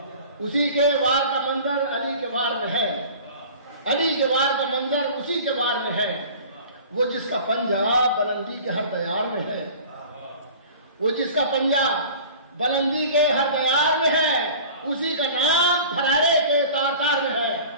اسی کے وار کا منظر علی کے وار میں ہے. علی کے وار کا منظر اسی کے وار میں ہے. وہ جس کا پنجہ بلندی کے ہر دیار میں ہے. وہ جس کا پنجہ بلندی کے ہر دیار میں ہے. اسی کا نام فرارے کے تار تار میں ہے.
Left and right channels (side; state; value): both; inverted; correlation -0.42